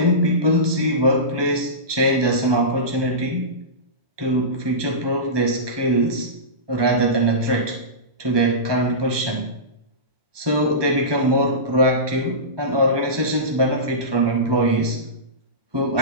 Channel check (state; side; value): late; left; 1.2 ms